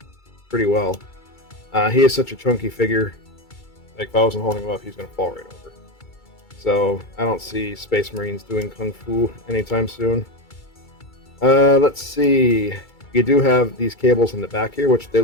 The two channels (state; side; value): late; right; 2.3 ms